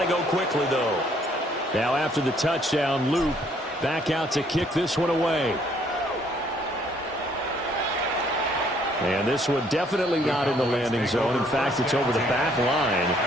go quickly, though. Now after the touchdown, Loop back out to kick this one away. And this one definitely not in the landing zone. In fact, it's over the back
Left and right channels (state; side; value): normal; both; correlation 0.64